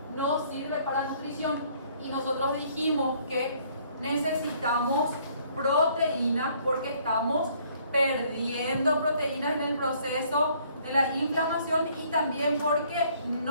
No sirve para nutrición. Y nosotros dijimos que necesitamos proteínas porque estamos perdiendo proteínas en el proceso de la inflamación y también porque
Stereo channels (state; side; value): inverted; both; correlation -0.62